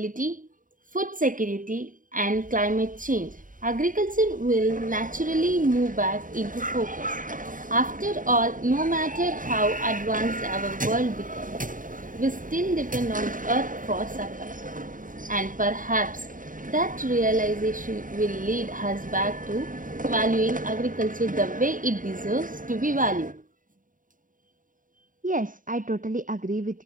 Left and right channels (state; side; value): late; left; 0.39 ms